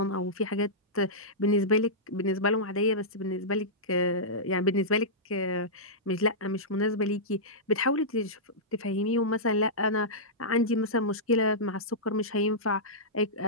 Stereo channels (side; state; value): both; normal; correlation -0.14